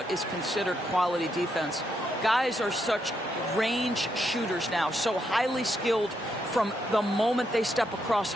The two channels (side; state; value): both; normal; correlation 0.79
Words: is considered quality defense. Guys are such range shooters now, so highly skilled from the moment they step across